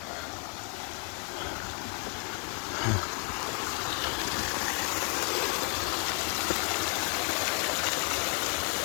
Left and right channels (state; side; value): quieter; right; 39.2 dB